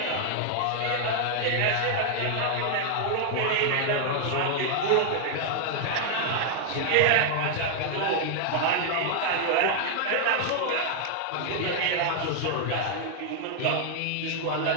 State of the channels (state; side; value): different; both; correlation 0.00